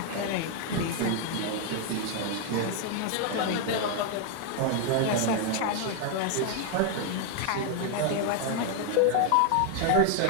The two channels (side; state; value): both; different; correlation 0.00